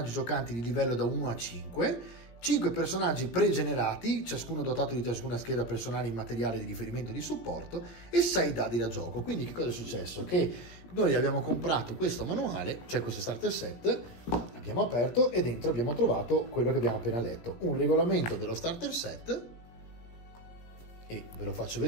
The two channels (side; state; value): right; late; 17 ms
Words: giocanti di livello da 1 a 5, 5 personaggi pregenerati, ciascuno dotato di ciascuna scheda personale in materiale di riferimento e di supporto, e 6 dadi da gioco. Quindi che cosa è successo? Che noi abbiamo comprato questo manuale, cioè questo starter set, l'abbiamo aperto e dentro abbiamo trovato quello che abbiamo appena letto, un regolamento dello starter set, e ve lo faccio